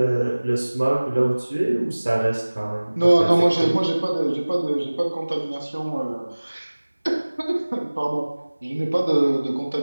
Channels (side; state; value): both; inverted; correlation -1.00